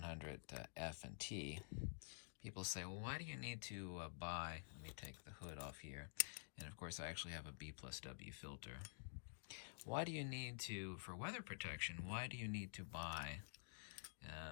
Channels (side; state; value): right; silent; digital silence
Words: and T. People say, well, why do you need to buy, let me take the hood off here, and of course I actually have a B+W filter. Why do you need to, for weather protection, why do you need to buy,